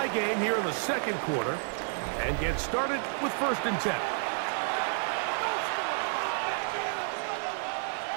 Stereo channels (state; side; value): silent; left; 58 dB below the other